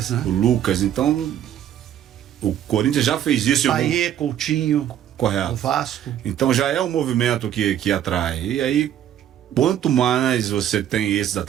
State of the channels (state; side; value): quieter; left; 10.6 dB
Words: né? O Lucas. Então, o Corinthians já fez isso. Paê, Coutinho. Correto. O Vasco. Então já é um movimento que atrai. E aí, quanto mais você tem esses